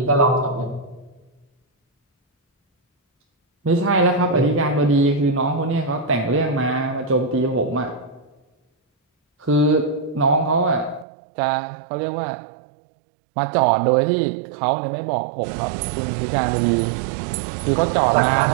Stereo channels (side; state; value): left; drops out; at 11.1 s